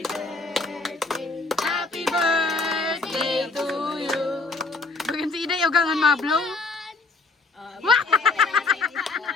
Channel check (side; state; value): right; quieter; 3.7 dB